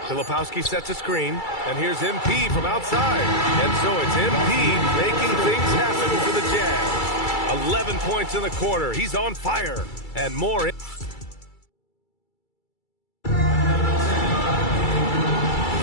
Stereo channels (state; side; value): late; right; 2.3 ms